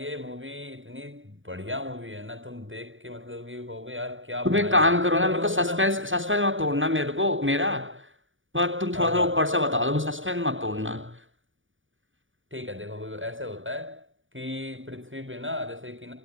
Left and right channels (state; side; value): late; left; 0.57 ms